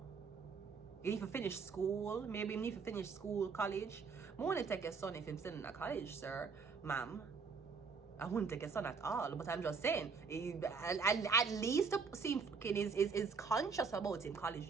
You need to finish school. Maybe you need to finish school, college. I want to take your son if he's still in a college, sir. Ma'am. I wouldn't take your son at all. But I'm just saying, at least seem fucking is conscious about him college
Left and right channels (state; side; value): quieter; left; 5.1 dB